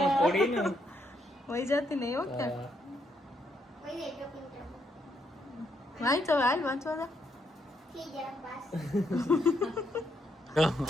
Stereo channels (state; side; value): normal; both; correlation 0.76